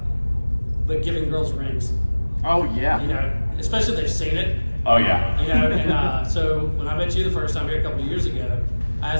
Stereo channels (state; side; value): inverted; both; correlation -1.00